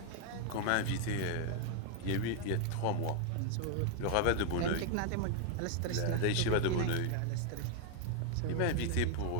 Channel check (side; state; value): both; different; correlation 0.00